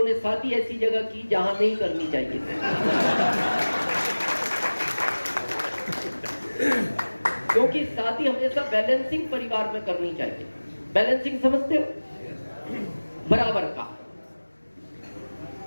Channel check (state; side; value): inverted; both; correlation -1.00